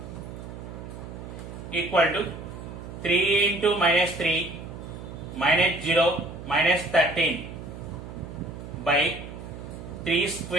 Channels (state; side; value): noise; right; hum, 11 dB below the sound